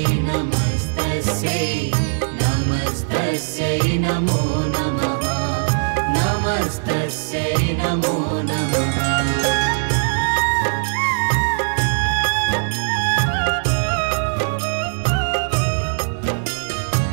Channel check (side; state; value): left; silent; 66 dB below the other